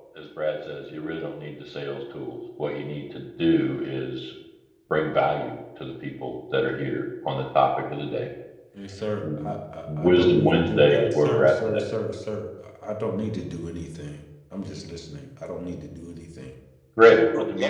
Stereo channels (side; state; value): both; identical; correlation 1.00